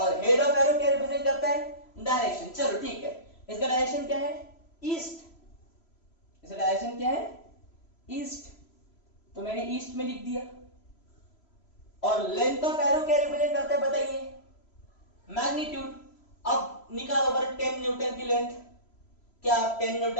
हेड ऑफ एरो क्या रिप्रेजेंट करता है, डायरेक्शन। चलो ठीक है, इसका डायरेक्शन क्या है, ईस्ट। इसका डायरेक्शन क्या है, ईस्ट। तो मैंने ईस्ट में लिख दिया। और लेंथ ऑफ एरो क्या रिप्रेजेंट करता है बताइए, मैग्नीट्यूड। अब निकालो बड़ा 10 न्यूटन की लेंथ। क्या आप 10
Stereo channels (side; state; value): right; late; 3.0 ms